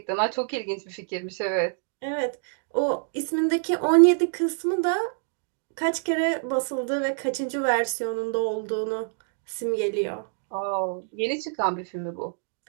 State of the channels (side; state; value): left; silent; digital silence